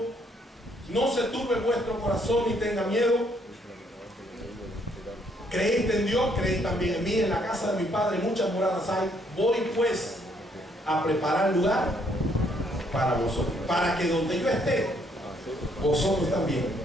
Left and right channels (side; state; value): both; normal; correlation 0.69